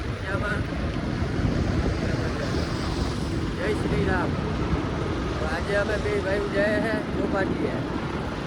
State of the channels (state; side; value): identical; both; correlation 1.00